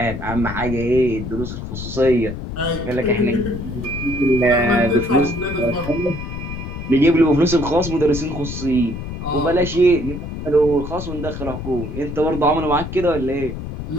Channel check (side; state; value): left; noise; rumble, 7 dB below the sound